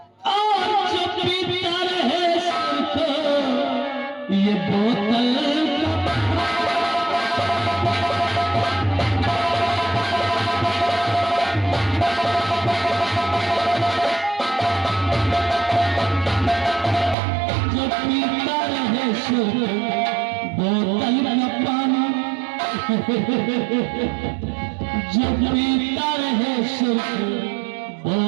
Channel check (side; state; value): left; drops out; at 17.2 s